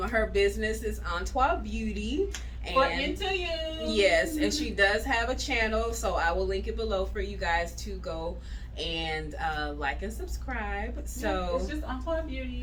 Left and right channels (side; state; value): both; identical; correlation 1.00